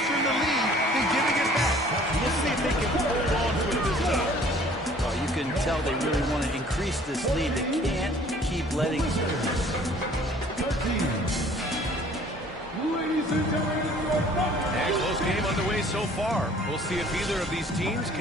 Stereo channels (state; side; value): normal; both; correlation 0.53